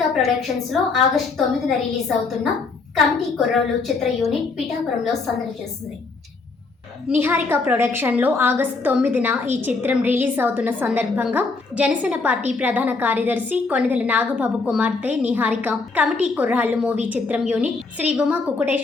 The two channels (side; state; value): right; quieter; 4.0 dB